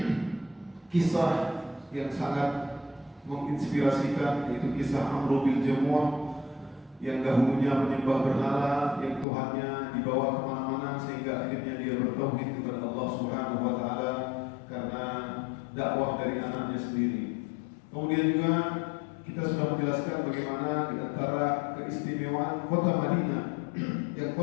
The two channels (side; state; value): right; drops out; at 9.2 s